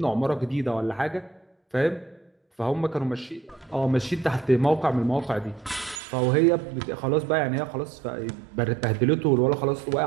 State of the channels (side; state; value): left; drops out; at 6.0 s